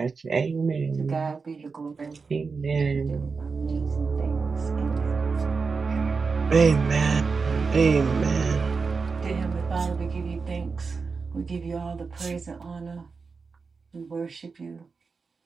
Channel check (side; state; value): left; quieter; 4.8 dB